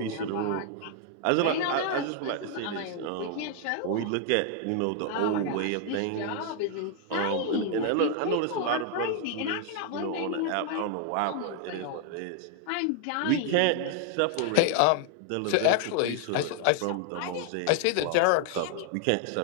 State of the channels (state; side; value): different; both; correlation 0.00